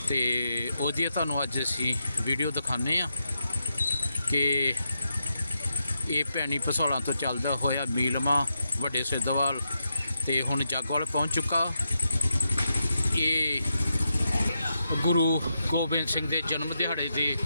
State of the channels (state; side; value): inverted; both; correlation -0.85